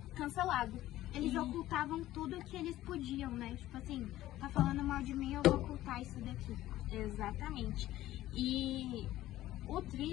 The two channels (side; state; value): right; quieter; 14.8 dB